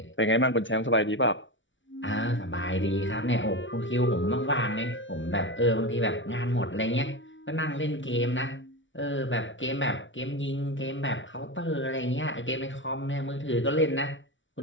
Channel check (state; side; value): late; right; 0.55 ms